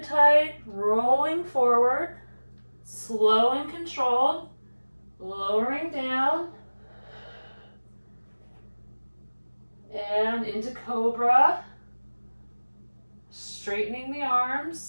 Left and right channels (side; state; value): both; inverted; correlation -1.00